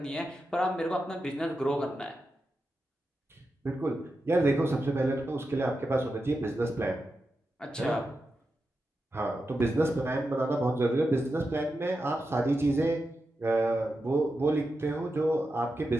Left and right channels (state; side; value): normal; both; correlation 0.89